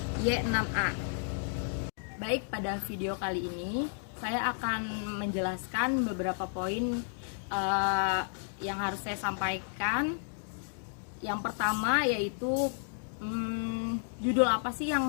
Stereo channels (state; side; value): silent; right; digital silence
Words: Y6A. Baik, pada video kali ini saya akan menjelaskan beberapa poin yang harus saya sampaikan. Yang pertama yaitu judul apa sih